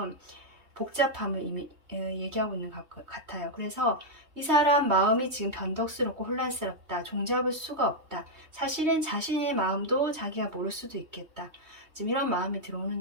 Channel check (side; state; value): left; late; 3.2 ms